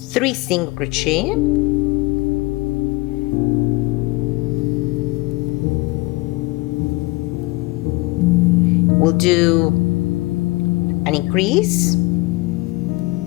3 single crochet. We'll do an increase,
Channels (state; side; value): quieter; right; 22.9 dB